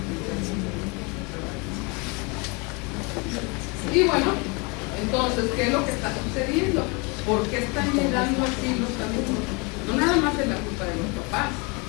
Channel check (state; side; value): quieter; right; 30.0 dB